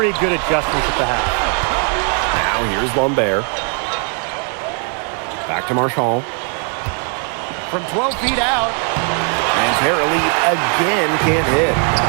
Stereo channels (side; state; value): left; quieter; 39.7 dB